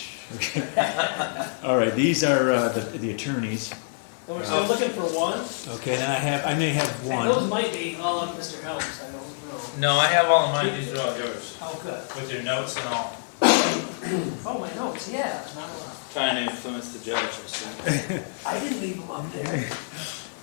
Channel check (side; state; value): right; silent; digital silence